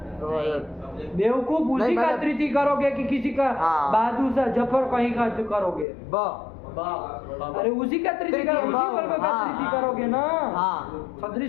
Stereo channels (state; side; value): drops out; right; at 5.9 s